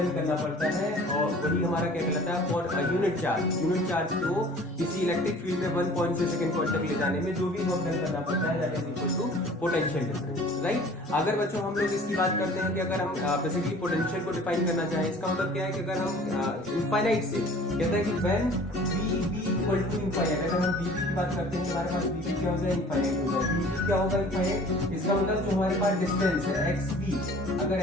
करना पड़ता है और वही हमारा क्या कहलाता है, फॉर यूनिट चार्ज को किसी इलेक्ट्रिक फील्ड में वन पॉइंट से सेकंड पॉइंट तक ले जाने में जो भी वर्क डन करना पड़ता है that is equal to potential difference. Right, अगर बच्चों हम लोग इसकी बात करते हैं कि अगर हम बेसिकली पोटेंशियल को डिफाइन करना चाहें, इसका मतलब क्या है कि अगर हम इनफाइनाइट से कहते हैं कि when VB equal to infinite, अगर हम VB की बात करते हैं हमारे पास VB क्या हो जाए, इनफाइनाइट हो जाए। VB क्या होगा, इनफाइनाइट। इसका मतलब जो हमारे पास डिस्टेंस है XB, अगर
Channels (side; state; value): both; normal; correlation 0.48